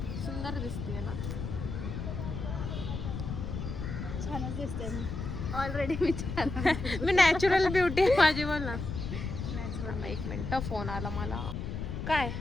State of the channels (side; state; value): left; noise; rumble, 5 dB below the sound